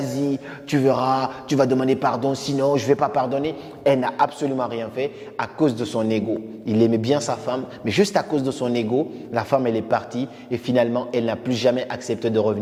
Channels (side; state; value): both; identical; correlation 1.00